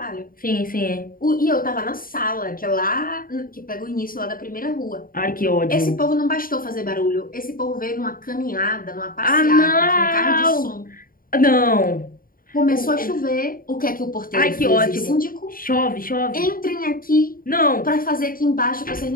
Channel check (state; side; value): late; right; 0.41 ms